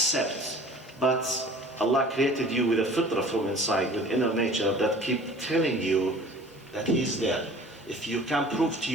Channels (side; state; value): both; normal; correlation 0.46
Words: But Allah created you with a fitrah from inside, with inner nature that keep telling you that He is there. If you can prove to